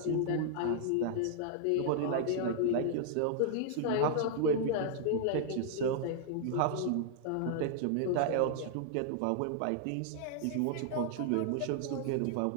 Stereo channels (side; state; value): both; different; correlation -0.01